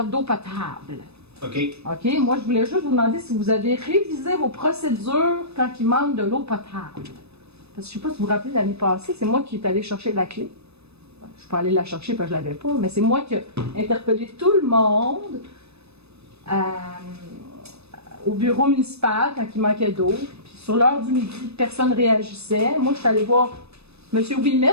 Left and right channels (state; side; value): late; left; 0.79 ms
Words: d'eau potable. OK. OK, moi je voulais juste vous demander si vous avez révisé vos procédures quand il manque de l'eau potable. Parce que je sais pas si vous vous rappelez l'année passée, c'est moi qui est allé chercher la clé. Je suis pas allée la chercher parce que je l'avais pas, mais c'est moi qui ai interpellé tout le monde au bureau municipal quand il manquait d'eau. Puis sur l'heure du midi, personne ne réagissait. Moi, je suis allée voir M.